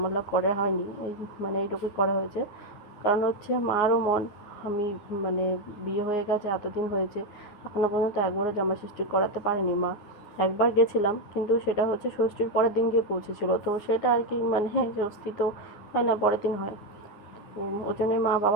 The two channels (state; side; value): late; right; 9.6 ms